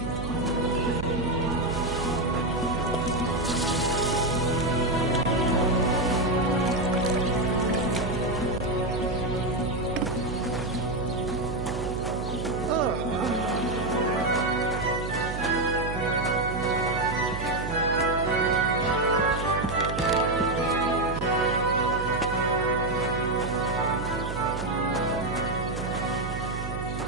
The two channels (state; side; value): noise; right; hum, 6 dB below the sound